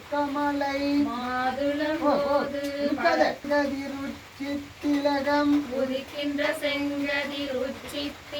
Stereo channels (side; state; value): both; identical; correlation 1.00